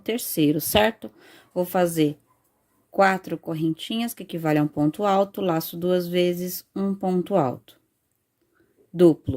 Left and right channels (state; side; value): identical; both; correlation 1.00